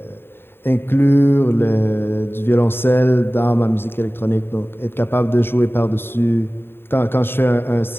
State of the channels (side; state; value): right; late; 0.11 ms